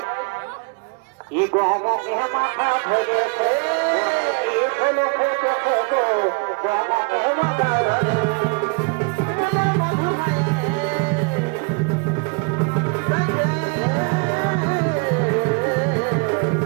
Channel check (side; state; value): left; quieter; 32.8 dB